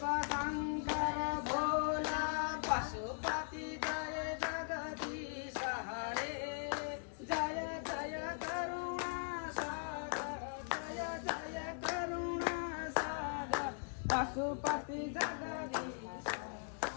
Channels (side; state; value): right; silent; digital silence